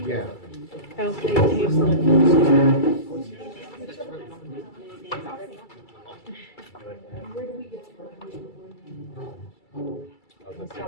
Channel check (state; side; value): late; right; 2.3 ms